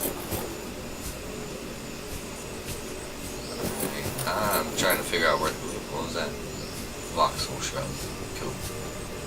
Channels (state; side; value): identical; both; correlation 1.00